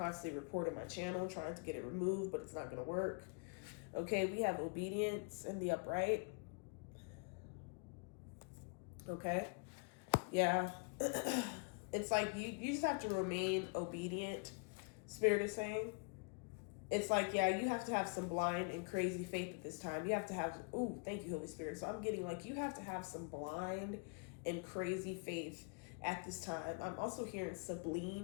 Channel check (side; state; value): right; quieter; 35.4 dB